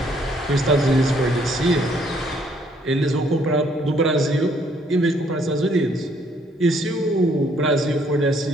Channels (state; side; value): normal; both; correlation 0.66